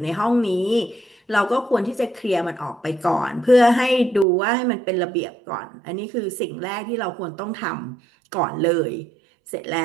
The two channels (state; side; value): drops out; left; at 4.2 s